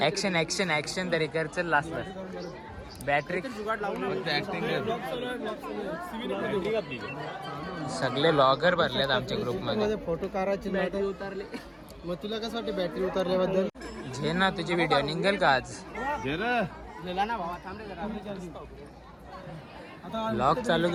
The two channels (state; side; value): identical; both; correlation 1.00